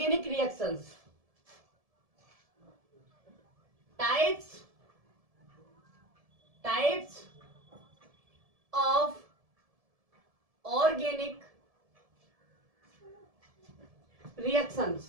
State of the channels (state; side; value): late; left; 1.7 ms